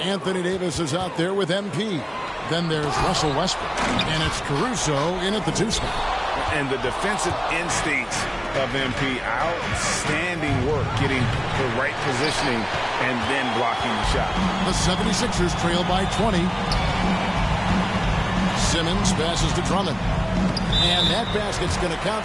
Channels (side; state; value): both; identical; correlation 1.00